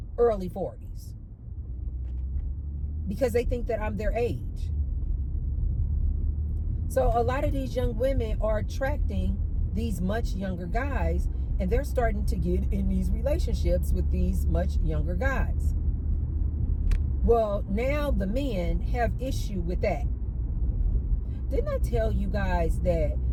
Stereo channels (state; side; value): identical; both; correlation 1.00